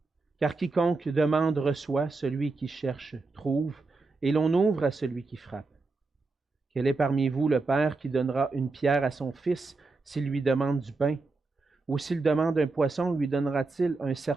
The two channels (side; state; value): left; quieter; 3.7 dB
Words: Car quiconque demande reçoit, celui qui cherche trouve, et l'on ouvre à celui qui frappe. Quel est parmi vous le père qui donnera une pierre à son fils s'il lui demande du pain? Ou s'il demande un poisson, lui donnera-t-il un